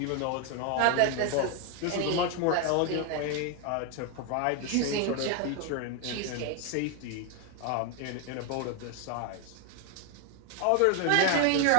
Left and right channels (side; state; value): both; different; correlation 0.01